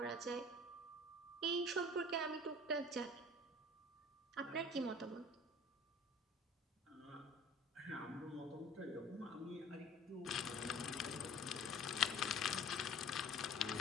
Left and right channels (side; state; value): both; normal; correlation 0.46